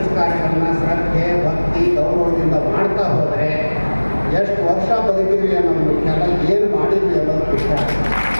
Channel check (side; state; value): both; inverted; correlation -1.00